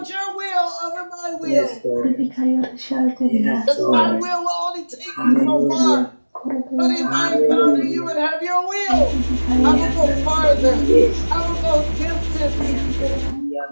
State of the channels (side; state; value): both; inverted; correlation -1.00